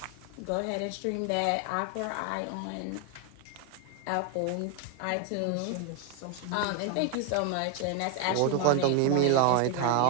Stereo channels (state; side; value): different; both; correlation 0.01